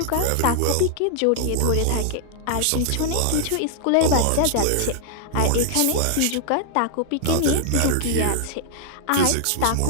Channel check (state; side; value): different; both; correlation 0.00